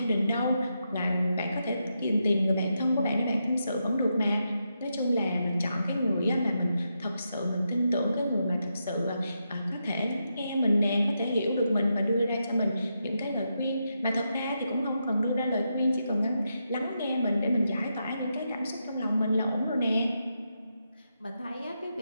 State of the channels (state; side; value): inverted; both; correlation -0.84